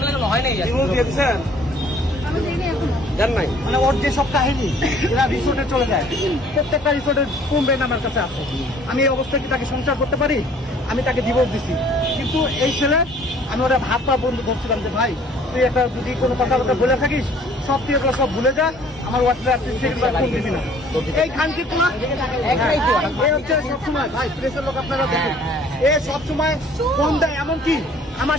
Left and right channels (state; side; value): normal; both; correlation 0.55